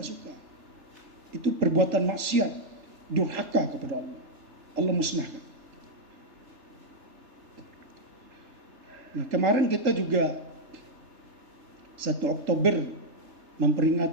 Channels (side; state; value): left; late; 3.4 ms